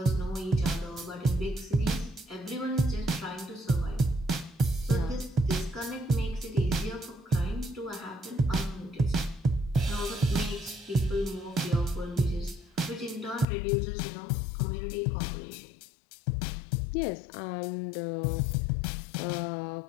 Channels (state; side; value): drops out; right; at 13.5 s